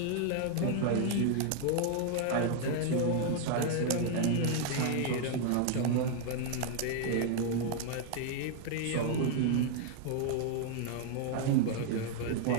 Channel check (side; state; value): both; different; correlation 0.00